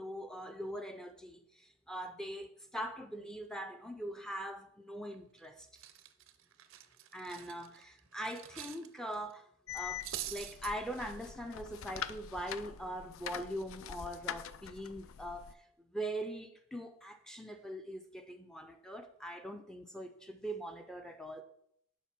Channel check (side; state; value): both; normal; correlation 0.61